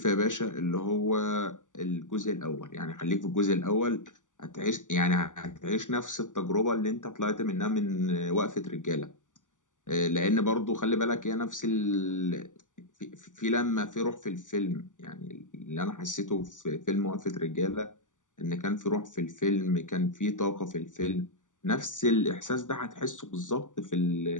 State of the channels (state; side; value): late; right; 0.87 ms